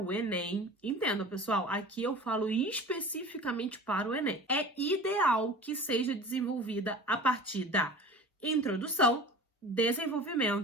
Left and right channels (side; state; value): both; normal; correlation 0.39